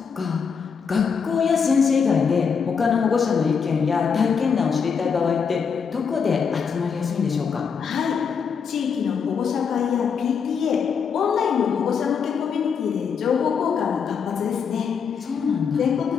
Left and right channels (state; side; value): quieter; right; 6.3 dB